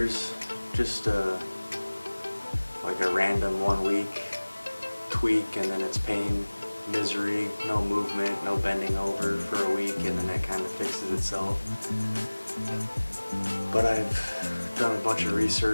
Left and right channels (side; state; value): both; inverted; correlation -1.00